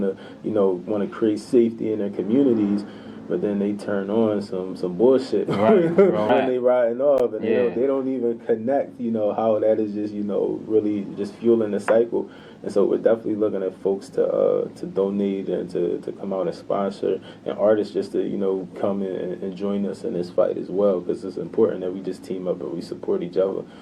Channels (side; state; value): both; identical; correlation 1.00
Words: to create safety in their communities. but then they turn on some bullshit right. when they riding off, and they don't even connect, how that is just, really just fueling the cycle. And so we're definitely looking at folks to donate and to come out and sponsor, and artists just to, come in and join us in this fight as well, because it's important that we just team up and we support each other.